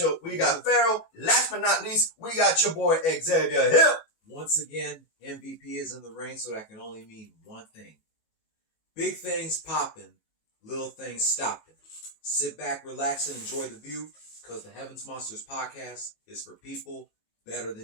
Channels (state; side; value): late; right; 19 ms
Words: We got Farrell. Last but not least, we got your boy Xavier Hill. Once again, MVP is in the ring, so that can only mean one thing. Big things popping, little things stopping. Sit back, relax, and enjoy the view, because the Heavens Monsters podcast is for people better